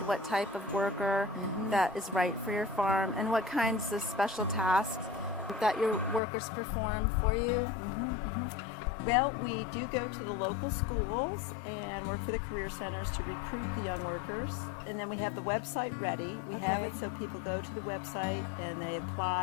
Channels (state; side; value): drops out; right; at 6.2 s